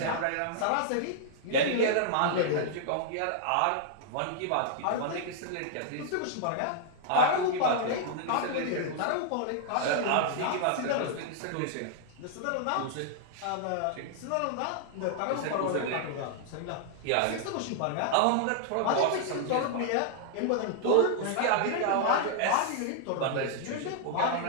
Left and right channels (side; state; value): both; different; correlation -0.01